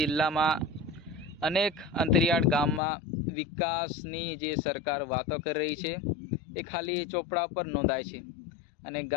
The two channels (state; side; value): drops out; right; at 2.8 s